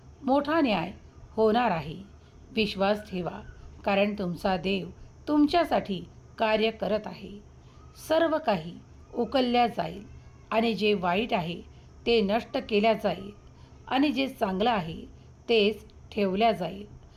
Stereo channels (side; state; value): both; identical; correlation 1.00